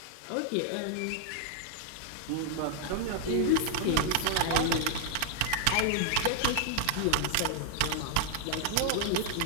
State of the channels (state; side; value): different; both; correlation -0.01